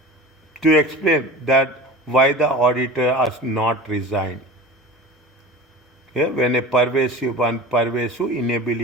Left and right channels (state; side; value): normal; both; correlation 0.35